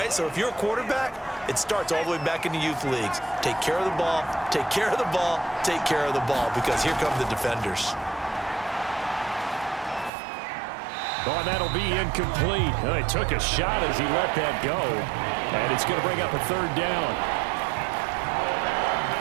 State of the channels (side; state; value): left; drops out; at 10.1 s